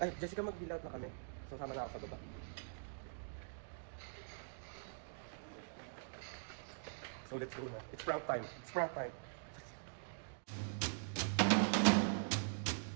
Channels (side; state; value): left; silent; digital silence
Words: Ay, Jessica, mag-bill out na kami. Sasama na ako sa baba. So let's go na. It's prank time. It's prank time.